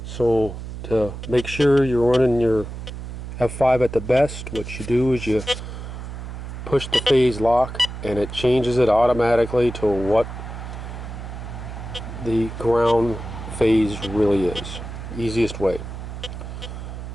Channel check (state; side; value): noise; right; hum, 9 dB below the sound